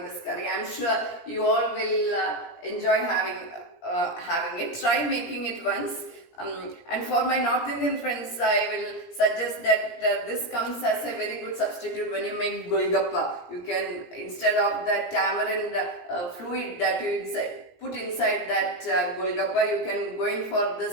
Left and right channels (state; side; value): late; right; 17 ms